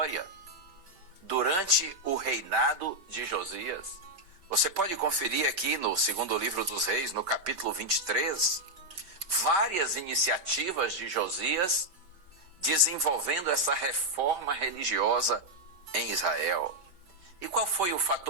durante o reinado de Josias. Você pode conferir aqui no segundo livro dos Reis, no capítulo 23, várias iniciativas de Josias desenvolvendo essa reforma religiosa em Israel. E qual foi o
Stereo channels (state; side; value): late; left; 5.4 ms